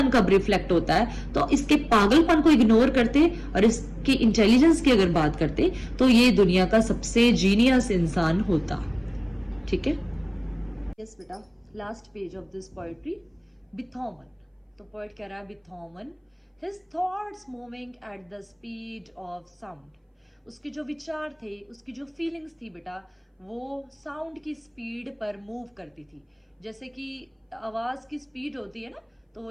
कब रिफ्लेक्ट होता है, तो इसके पागलपन को इग्नोर करते और इसकी इंटेलिजेंस की अगर बात करते तो ये दुनिया का सबसे जीनियस इंसान होता। ठीक है। यस बेटा, last page of this poetry, बिथोवन। तो पोएट कह रहा है बिथोवन, his thoughts moving at the speed of sound. उसके जो विचार थे, उसकी जो फीलिंग्स थी बेटा, वो साउंड की स्पीड पर मूव करती थी। जैसे कि आवाज की स्पीड होती है ना,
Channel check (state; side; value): identical; both; correlation 1.00